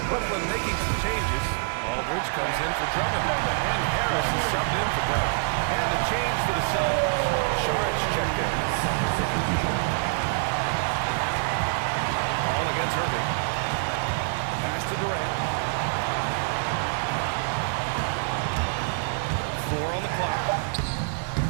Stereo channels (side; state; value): left; silent; digital silence